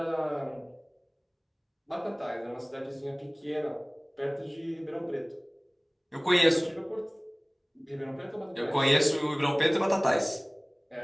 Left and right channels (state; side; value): identical; both; correlation 1.00